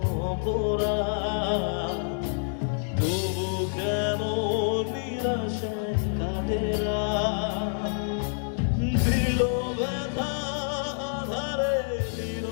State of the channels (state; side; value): silent; right; digital silence